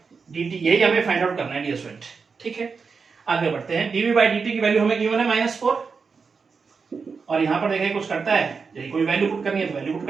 D T, यही हमें फाइंड आउट करना है डियर स्टूडेंट। ठीक है, आगे बढ़ते हैं। डीवी बाई डी टी की वैल्यू हमें गिवन है -4 और यहाँ पर देखिए कुछ करता है, यही कोई वैल्यू पुट करनी है तो वैल्यू पुट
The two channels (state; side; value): quieter; left; 5.2 dB